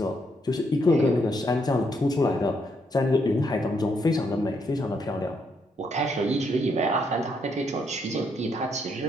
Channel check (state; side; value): normal; both; correlation 0.75